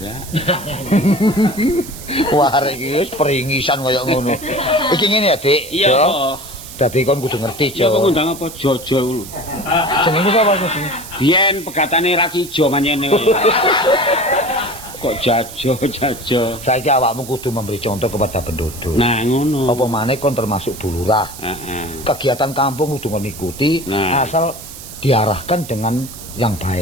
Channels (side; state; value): right; noise; hiss, 14 dB below the sound